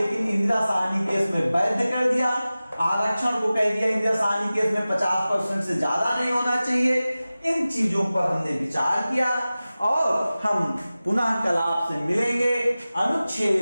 इंदिरा साहनी केस में वैध कर दिया। आरक्षण को कह दिया इंदिरा साहनी केस में 50% से ज्यादा नहीं होना चाहिए। इन चीजों पर हमने विचार किया और हम पुनः कल आपसे मिलेंगे,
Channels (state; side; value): inverted; both; correlation -0.96